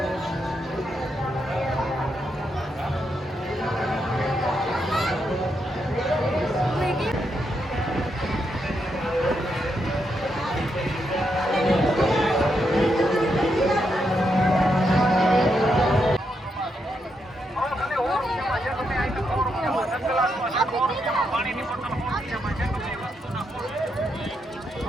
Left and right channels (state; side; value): normal; both; correlation 0.81